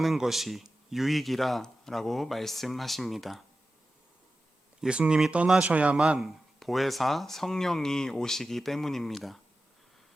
것이 유익이라고 말씀하십니다. 예수님이 떠나셔야만 보혜사 성령이 오시기 때문입니다.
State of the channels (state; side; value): normal; both; correlation 0.94